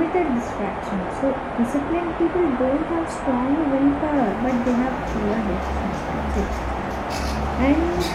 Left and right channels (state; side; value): identical; both; correlation 1.00